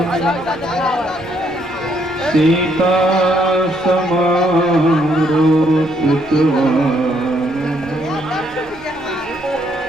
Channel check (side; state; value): right; noise; hum, 27 dB below the sound